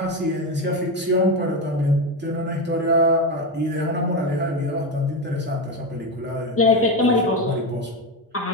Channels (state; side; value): normal; both; correlation 0.14